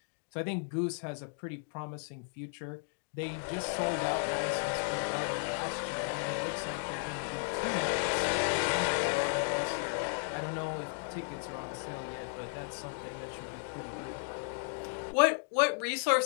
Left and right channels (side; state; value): right; silent; digital silence